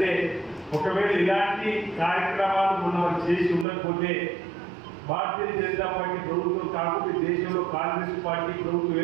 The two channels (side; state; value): left; drops out; at 3.7 s